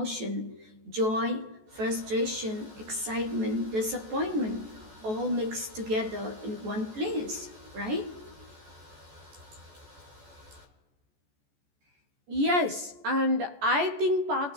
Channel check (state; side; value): late; left; 14 ms